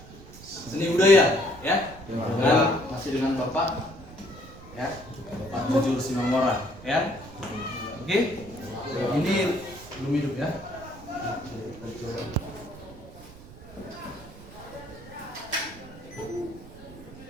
seni budaya, ya? Masih dengan Bapak, ya? Bapak Jujur Simangora, ya? Oke? Ini belum hidup ya?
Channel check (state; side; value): noise; right; rumble, 18 dB below the sound